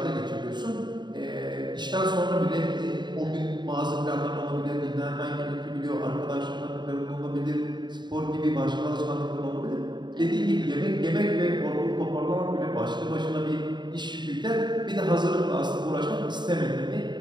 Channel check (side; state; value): left; late; 0.22 ms